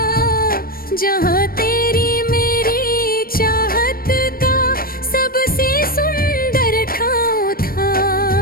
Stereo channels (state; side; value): late; right; 0.43 ms